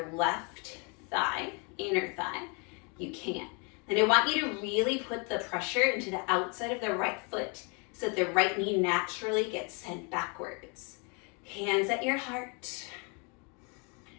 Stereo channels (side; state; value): right; quieter; 33.4 dB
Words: left thigh, inner thigh, you can. Then I want you to really put the pressure into the outside of the right foot so that the right knee naturally gets sent backwards. Hands at your heart.